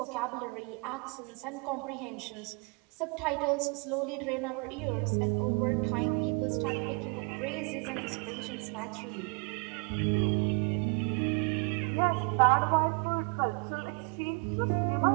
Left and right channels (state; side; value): quieter; left; 32.9 dB